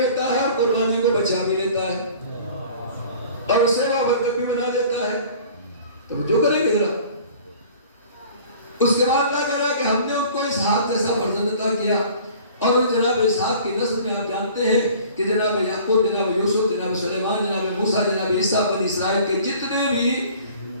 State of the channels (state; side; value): inverted; both; correlation -0.48